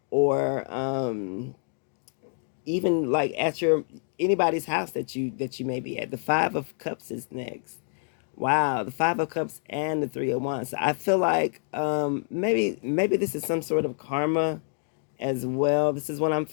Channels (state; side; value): silent; right; 60 dB below the other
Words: or even like at your anybody's house that you may be at. The 5 of Cups is next. Wow, the 5 of Cups and the 3 of Wands. So I feel like maybe this is some sort of karma as well. This is what I'm